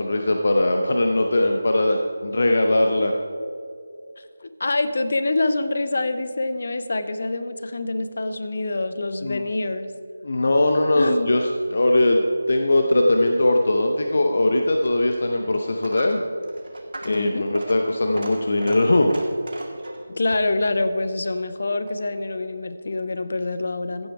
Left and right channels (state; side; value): inverted; both; correlation -0.96